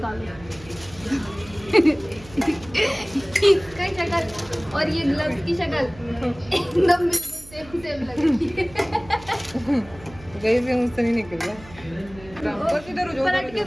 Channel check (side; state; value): right; noise; hum, 20 dB below the sound